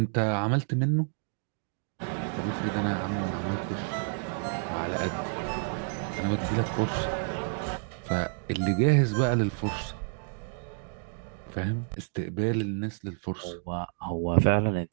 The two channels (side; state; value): left; silent; 58 dB below the other